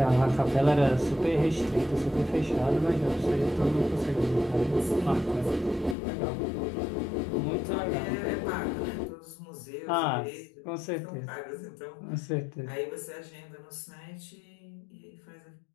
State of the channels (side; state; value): right; drops out; at 6.0 s